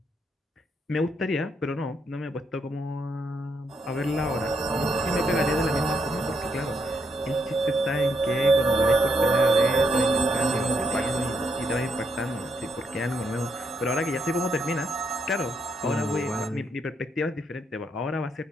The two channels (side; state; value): both; normal; correlation 0.77